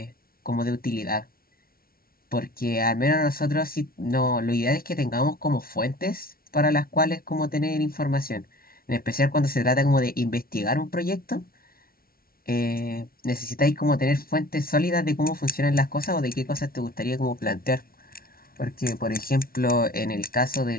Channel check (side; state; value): right; late; 0.43 ms